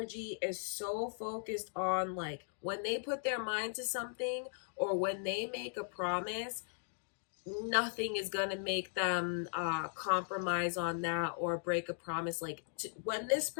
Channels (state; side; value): silent; right; digital silence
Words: is so focused on, like, when they put their mind to something or when they make a promise, nothing is going to make them compromise on that or break a promise. Like, when this